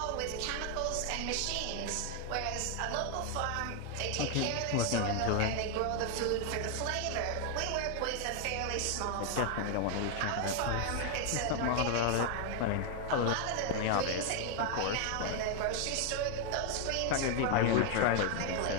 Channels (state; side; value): different; both; correlation 0.00